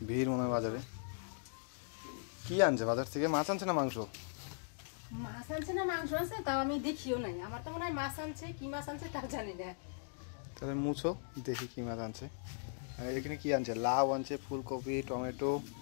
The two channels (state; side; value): silent; right; digital silence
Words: ভিড় মনে হয় বাজারে। কি আনছে বাজার থেকে? মাছ আনছে না মাংস? মাছ আনছে না মাংস আনছে তাও আমি দেখিও নাই। আমার তো মনে হয় মাছ আনছে, কি মাছ আনছে তাও জানি না। তাহলে মুছো দেখি কি মাছ আনছে। আর এখানে কি আনছে? লাউ আনছে, ফুলকপি, টমেটো,